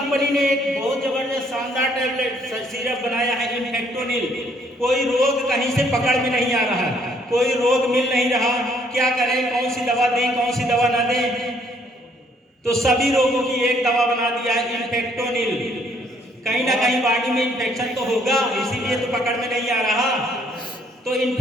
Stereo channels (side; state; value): both; normal; correlation 0.66